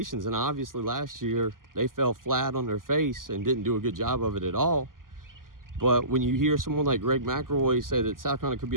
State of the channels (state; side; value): late; left; 0.91 ms